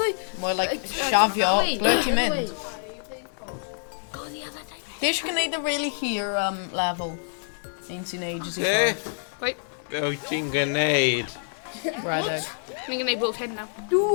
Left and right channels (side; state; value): right; silent; digital silence